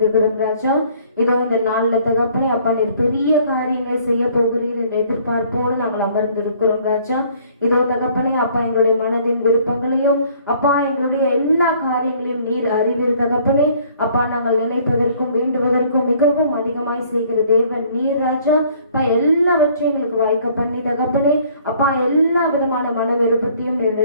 ராஜா. இதோ இந்த நாளில் தகப்பனை அப்பா, நீர் பெரிய காரியங்களை செய்ய போகிறீர் என்ற எதிர்பார்ப்போடு நாங்கள் அமர்ந்திருக்கிறோம் ராஜா. இதோ தகப்பனை அப்பா, எங்களுடைய மனதின் விருப்பங்களையும் அப்பா, எங்களுடைய எல்லா காரியங்களையும் நீர் அறிவீர் தகப்பனே. அப்பா, நாங்கள் நினைப்பதற்கும் வேண்டுவதற்கும் மிகவும் அதிகமாய் செய்கிற தேவன் நீர் ராஜா. அப்பா, எல்லாவற்றையும் எங்களுக்கு வாய்க்க பண்ணி தகப்பனே அப்பா, எல்லா விதமான மன விருப்பத்தையும்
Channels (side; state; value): both; inverted; correlation -0.58